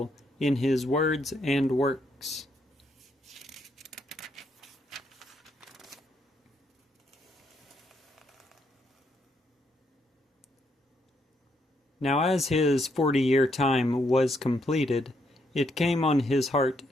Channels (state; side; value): normal; both; correlation 0.75